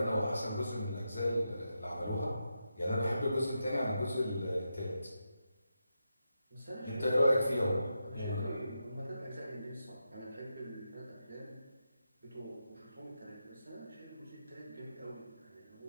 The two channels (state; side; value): inverted; both; correlation -0.86